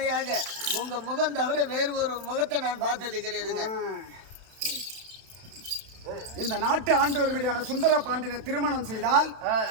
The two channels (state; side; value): late; left; 31 ms